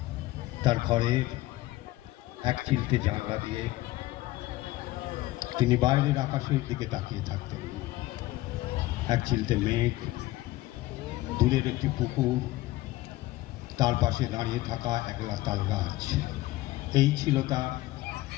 তার ঘরের এক চিলতে জানলা দিয়ে তিনি বাইরের আকাশের দিকে তাকিয়ে থাকতেন। এক চিলতে মেঘ, দূরের একটি পুকুর, তার পাশে দাঁড়িয়ে থাকা একলা তাল গাছ, এই ছিল তার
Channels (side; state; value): right; quieter; 17.7 dB